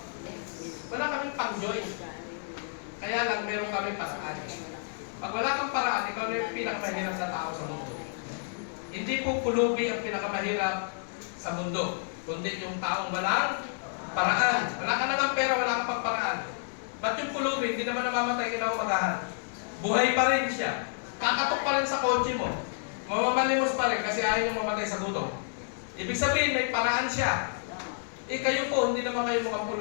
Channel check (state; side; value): silent; right; 58 dB below the other